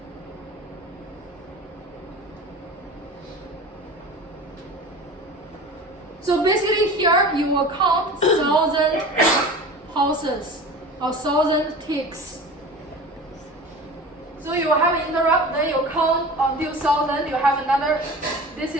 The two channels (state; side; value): normal; both; correlation 0.36